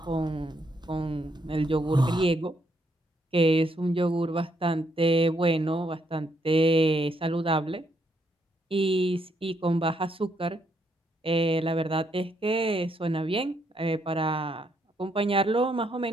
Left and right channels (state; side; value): normal; both; correlation 0.75